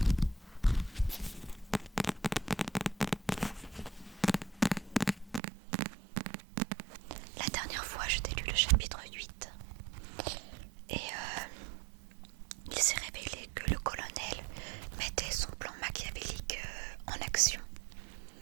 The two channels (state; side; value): drops out; left; at 5.4 s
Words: La dernière fois, je t'ai lu le chapitre 8 et il s'est révélé que le colonel mettait son plan machiavélique en action